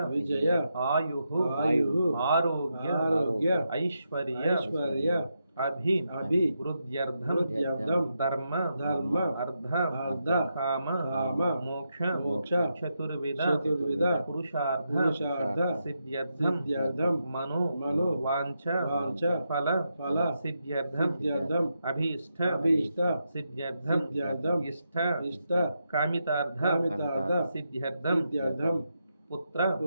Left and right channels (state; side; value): inverted; both; correlation -0.84